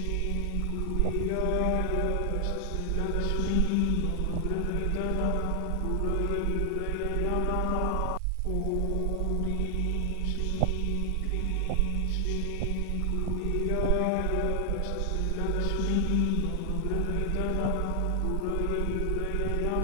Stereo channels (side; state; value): both; different; correlation 0.00